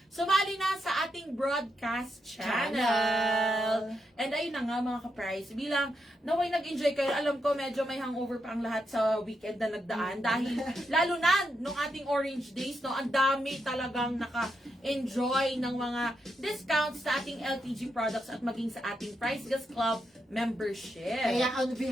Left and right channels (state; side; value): normal; both; correlation 0.83